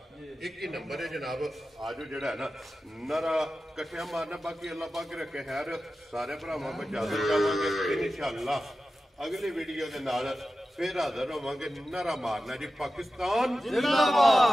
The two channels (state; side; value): normal; both; correlation 0.93